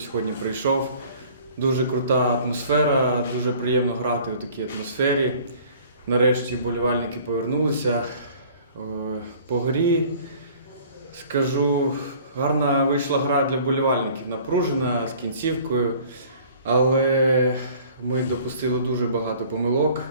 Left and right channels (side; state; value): both; inverted; correlation -0.51